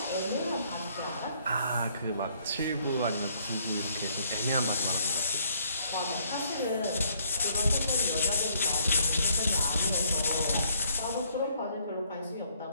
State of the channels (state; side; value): inverted; both; correlation -0.65